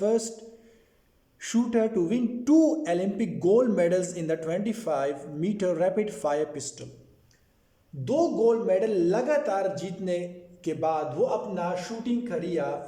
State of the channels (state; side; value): identical; both; correlation 1.00